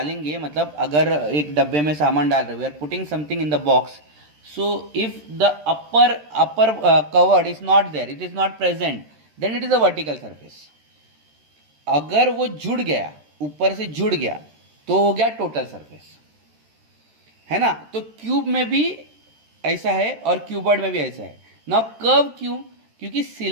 मतलब अगर एक डब्बे में सामान डाल रहे हो, we are putting something in the box, so if the upper covered is not there, it is not present, then it is a vertical surface. अगर वो जुड़ गया, ऊपर से जुड़ गया, तो हो गया टोटल सरफेस, है ना. तो क्यूब में भी ऐसा है और क्यूबॉइड में भी ऐसा है. ना कर्व क्यों, क्योंकि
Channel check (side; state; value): left; late; 13 ms